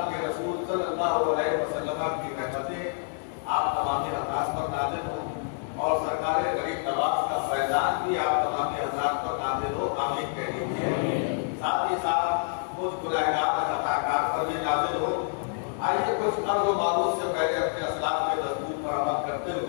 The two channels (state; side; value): silent; right; digital silence